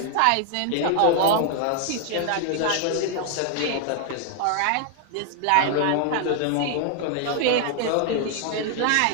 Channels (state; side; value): different; both; correlation 0.00